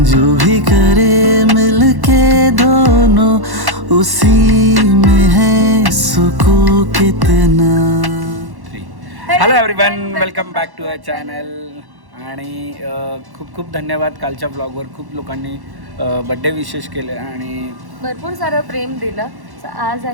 जो भी करे मिलके दोनों, उसी में है सुकून कितना। Hello everyone, welcome back to our channel. आणि खूप खूप धन्यवाद. कालच्या ब्लॉगवर खूप लोकांनी बड्डे विशेष केले आणि भरपूर सारं प्रेम दिलं. आज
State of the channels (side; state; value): left; late; 1.1 ms